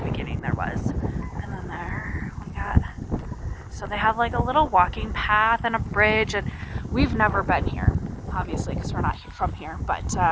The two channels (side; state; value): both; identical; correlation 1.00